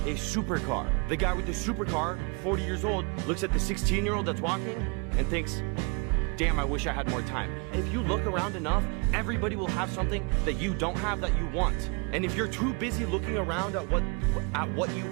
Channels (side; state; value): left; quieter; 32.4 dB